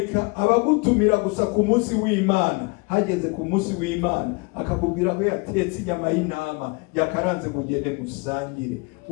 abagutumira gusa ku munsi w'Imana, hageze ku munsi w'Imana akakubwira ko yatetse inyama y'intama yakaranze kugende musangire,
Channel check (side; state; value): right; quieter; 28.9 dB